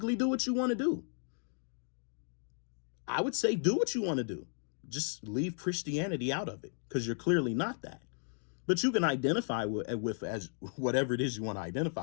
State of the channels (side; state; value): right; silent; 55 dB below the other